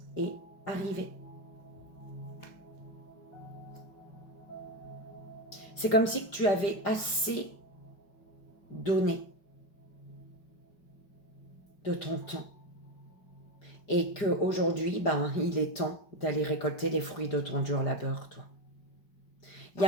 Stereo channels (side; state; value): right; late; 5.0 ms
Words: est arrivé. C'est comme si tu avais assez donné de ton temps. Et qu'aujourd'hui, il est temps d'aller récolter les fruits de ton dur labeur, toi. Il y